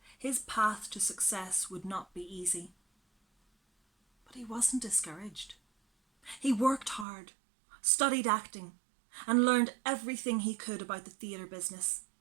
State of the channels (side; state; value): left; drops out; at 7.1 s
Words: his path to success would not be easy. But he wasn't discouraged. He worked hard, studied acting, and learned everything he could about the theatre business.